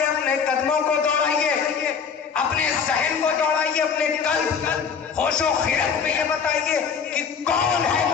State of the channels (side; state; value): right; quieter; 6.5 dB